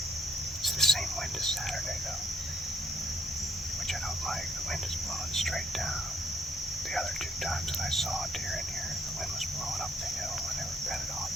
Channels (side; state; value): both; normal; correlation 0.68